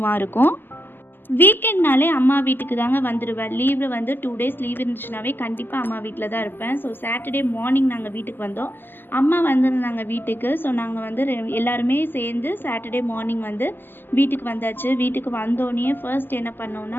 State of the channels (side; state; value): right; late; 0.095 ms